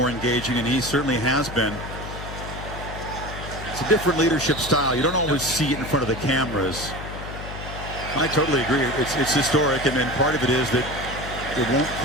engaging, and he certainly has been. It's a different leadership style. You don't always see it in front of the cameras. I totally agree. It's historic, and part of it is that it won't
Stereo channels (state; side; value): noise; left; hum, 10 dB below the sound